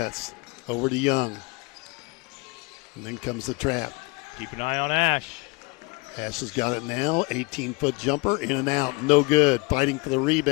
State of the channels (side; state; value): right; quieter; 26.9 dB